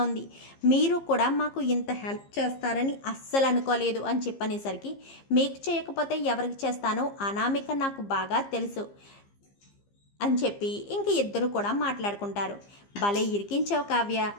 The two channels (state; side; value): late; right; 15 ms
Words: ఉంది, మీరు కూడా మాకు ఇంత హెల్ప్ చేస్తారని అస్సలు అనుకోలేదు అని చెప్పనేసరికి మీకు చేయకపోతే ఎవరికి చేస్తాను, అనామిక నాకు బాగా తెలుసు అని చెప్పి ఇంక ఇద్దరు కూడా మాట్లాడుకుంటారు. భలే ఇరికించావు